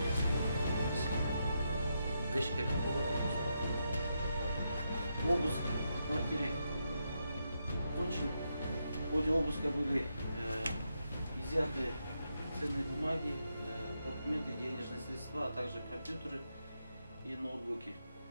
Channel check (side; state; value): both; inverted; correlation -0.83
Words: Обыск в квартире окончен. В ходе обыска были изъяты ценные бумаги, документы, денежные средства, а также компьютеры и ноутбуки.